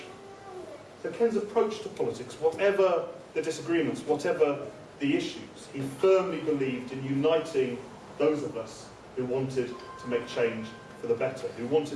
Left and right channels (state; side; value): identical; both; correlation 1.00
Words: So Ken's approach to politics, whatever the disagreements, whatever the issues, he firmly believed in uniting those of us who wanted to make change for the better, who